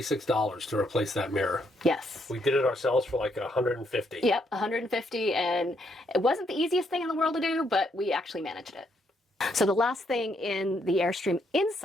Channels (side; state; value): both; normal; correlation 0.74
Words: to replace that mirror. Yes. We did it ourselves for like $150. Yep, $150, and it wasn't the easiest thing in the world to do, but we actually managed it. So the last thing in the Airstream